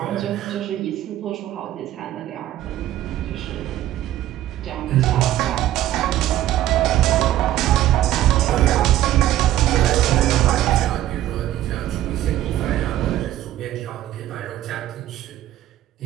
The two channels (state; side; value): quieter; left; 13.5 dB